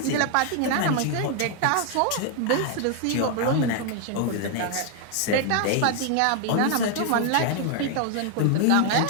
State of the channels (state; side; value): different; both; correlation 0.00